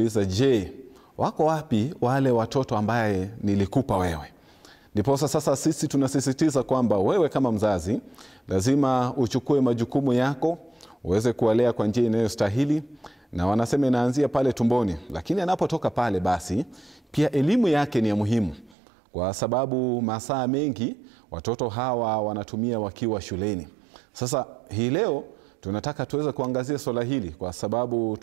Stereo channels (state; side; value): drops out; left; at 18.8 s